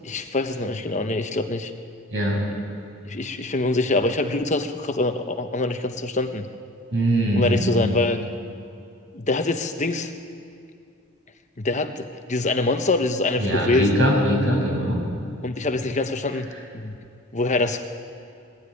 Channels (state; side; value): normal; both; correlation 0.42